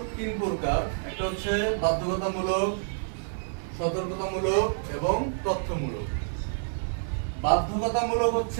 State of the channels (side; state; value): left; silent; 57 dB below the other